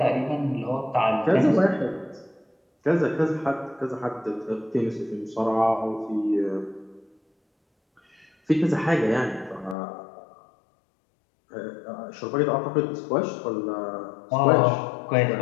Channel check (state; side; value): drops out; right; at 9.8 s